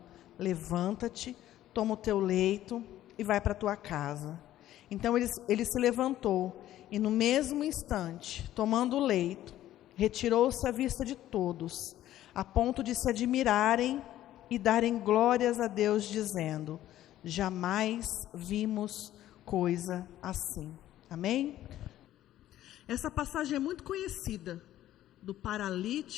levanta-te, toma o teu leito e vai para a tua casa. Então ele se levantou e no mesmo instante, tomando o leito, retirou-se à vista de todos, a ponto de se admirarem e darem glórias a Deus, dizendo: Jamais vimos coisa assim. Amém? Essa passagem é muito conhecida, do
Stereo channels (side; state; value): right; quieter; 13.3 dB